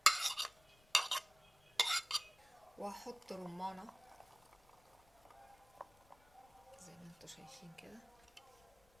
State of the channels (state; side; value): noise; left; rumble, 29 dB below the sound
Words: وهحط رمانة زي ما انتوا شايفين كده.